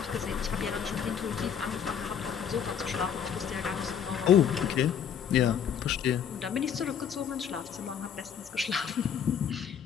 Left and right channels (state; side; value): quieter; right; 8.1 dB